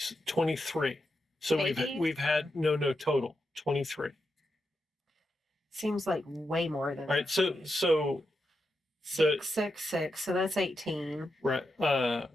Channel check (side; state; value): both; normal; correlation 0.87